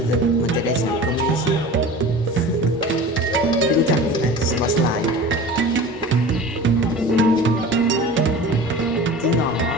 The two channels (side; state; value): both; normal; correlation 0.38